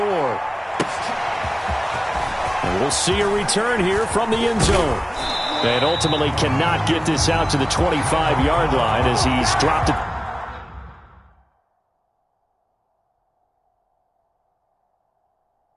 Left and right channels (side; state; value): both; identical; correlation 1.00